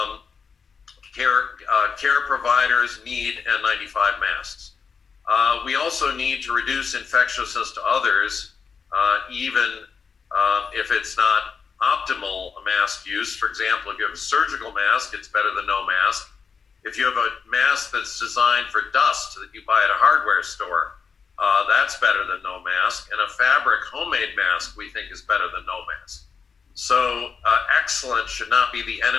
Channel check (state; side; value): quieter; right; 5.7 dB